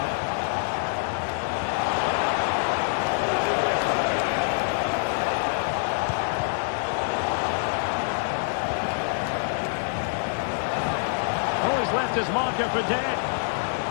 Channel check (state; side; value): silent; right; 61 dB below the other